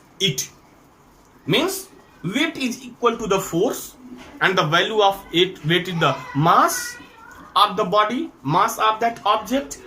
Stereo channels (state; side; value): identical; both; correlation 1.00